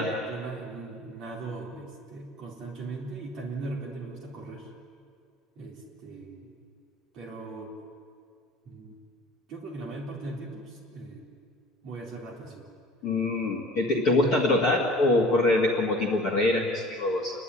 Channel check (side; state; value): both; normal; correlation 0.47